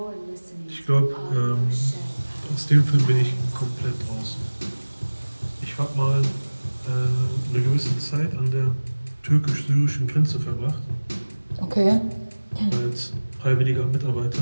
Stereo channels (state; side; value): inverted; both; correlation -1.00